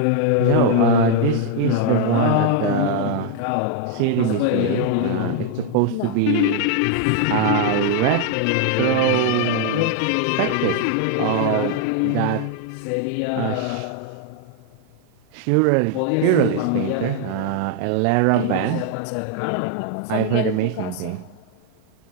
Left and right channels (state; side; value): different; both; correlation 0.00